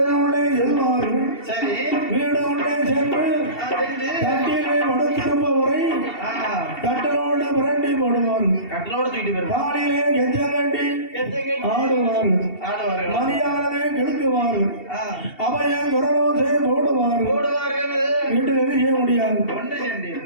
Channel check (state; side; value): late; right; 2.7 ms